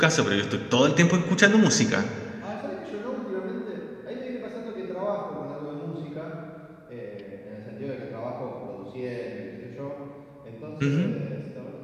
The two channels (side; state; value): both; identical; correlation 1.00